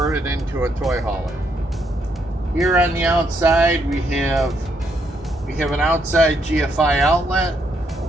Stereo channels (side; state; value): both; normal; correlation 0.75